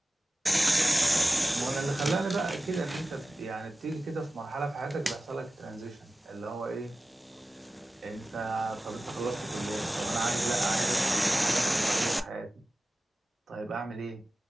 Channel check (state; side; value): normal; both; correlation 0.95